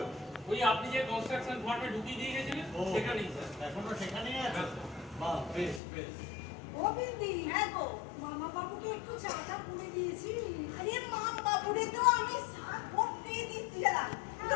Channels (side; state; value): right; drops out; at 5.8 s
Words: ওই আপনি যে কনস্ট্রাকশন ফার্মে ঢুকিয়ে দিয়ে গেছিলেন ও, সেখানেই স্যার। এখনো সেখানেই আছো? হ্যাঁ। বাহ, বেশ বেশ। ও বিন্দি, হ্যাঁ গো, মামা বাবুকে একটু চাটা পুড়ে দিয়েছি। আরে মাম বাবুরে তো আমি চা করতে দিচ্ছিলাম, কিন্তু